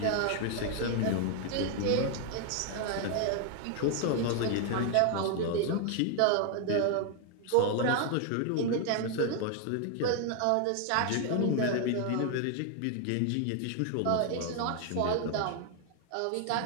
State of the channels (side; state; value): both; different; correlation 0.00